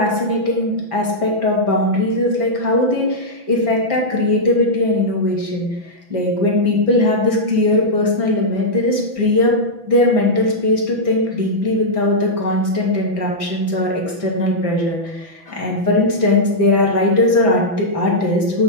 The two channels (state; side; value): late; left; 5.9 ms